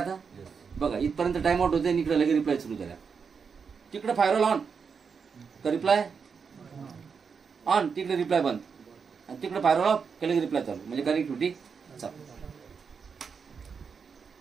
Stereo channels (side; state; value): left; quieter; 5.9 dB